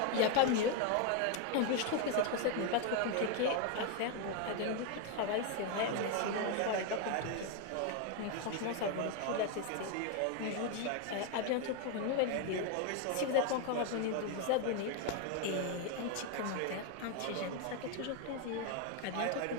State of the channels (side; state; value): both; different; correlation 0.01